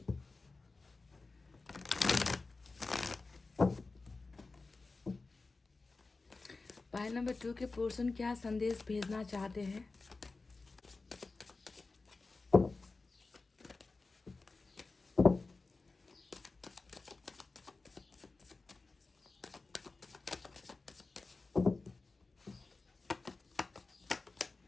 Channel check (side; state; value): right; quieter; 3.7 dB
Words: पाइल नंबर 2 के पर्सन क्या संदेश भेजना चाहते हैं?